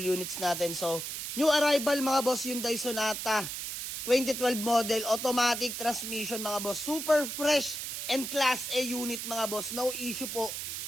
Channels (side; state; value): right; noise; hiss, 5 dB below the sound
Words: units natin. So, new arrival mga boss, Hyundai Sonata 2012 model, automatic transmission mga boss. Super fresh and class A unit mga boss. No issue po.